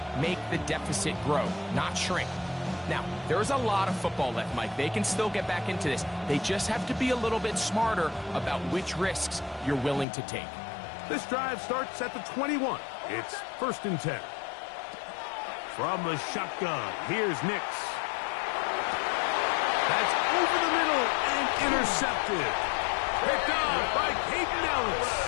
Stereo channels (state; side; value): drops out; right; at 10.1 s